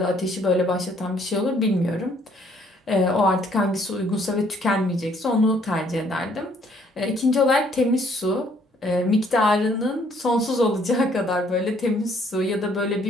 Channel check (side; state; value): both; normal; correlation 0.64